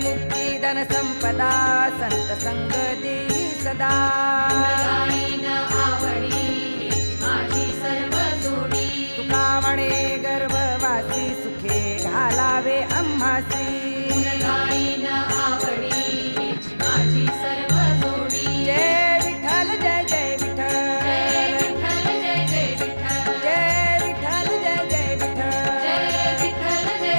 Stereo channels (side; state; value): both; inverted; correlation -1.00